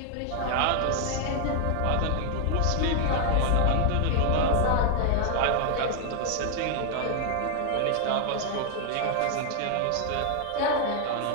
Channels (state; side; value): different; both; correlation 0.00